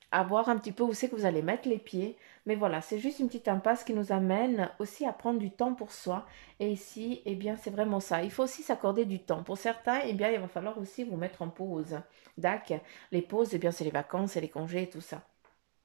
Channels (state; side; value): silent; left; digital silence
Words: à voir un petit peu où c'est que vous allez mettre les pieds. Mais voilà, c'est juste une petite impasse qui nous amène aussi à prendre du temps pour soi. Et ici, eh bien, c'est vraiment ça. Il faut aussi s'accorder du temps. Pour certains, eh bien, il va falloir aussi vous mettre en pause. D'accord. Les pauses, eh bien, c'est les vacances, c'est les congés et tout ça.